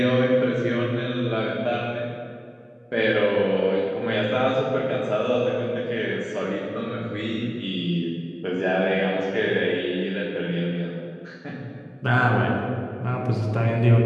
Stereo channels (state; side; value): identical; both; correlation 1.00